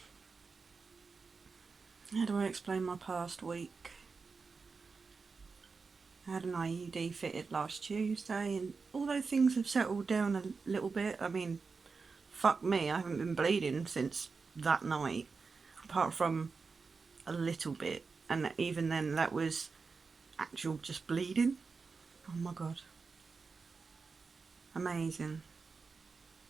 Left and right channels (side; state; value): left; quieter; 4.7 dB